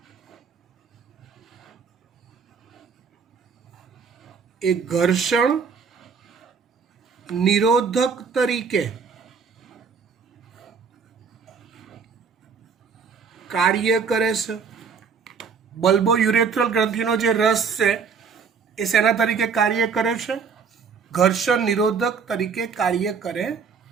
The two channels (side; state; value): left; quieter; 5.9 dB